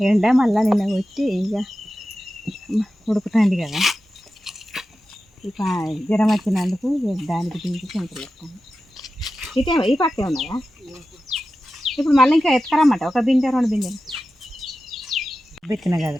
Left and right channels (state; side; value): normal; both; correlation 0.93